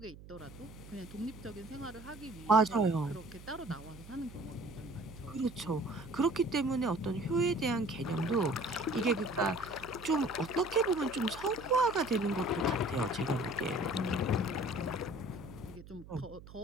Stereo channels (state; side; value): noise; right; hum, 17 dB below the sound